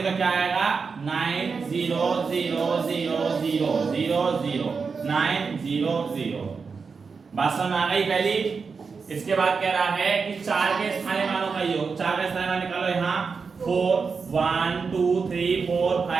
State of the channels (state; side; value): quieter; left; 5.2 dB